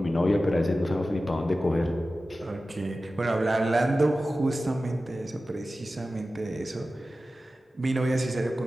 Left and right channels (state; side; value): normal; both; correlation 0.95